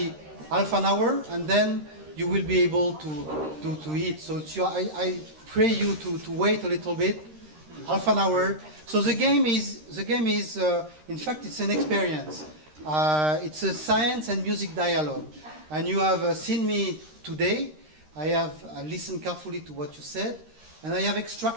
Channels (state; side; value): late; left; 13 ms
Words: half an hour, and then you will be able to eat. So I pray you to wait a little bit, half an hour. So the game is in fact it's an experience. It's a science and music dialogue, and you have seen me today. I have listened carefully to what you said, and I have